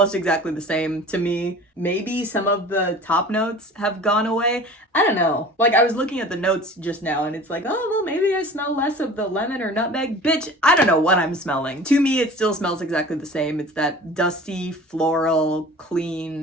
exactly the same to me. Maybe some of the top notes have gone away. I don't know. Like, I was looking at the notes just now and it's like, oh, well, maybe I smell less of the lemon or nutmeg. Bitch, I don't know what I'm smelling. To me, it still smells exactly the same. It's that dusty, floral,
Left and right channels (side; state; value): both; normal; correlation 0.41